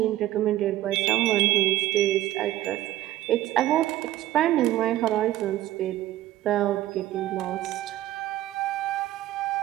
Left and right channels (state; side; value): quieter; left; 14.8 dB